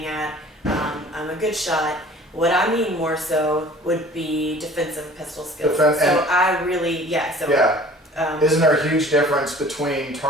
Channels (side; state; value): both; normal; correlation 0.48